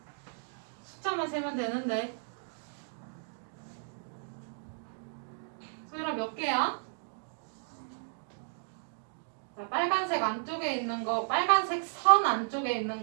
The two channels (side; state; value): left; silent; digital silence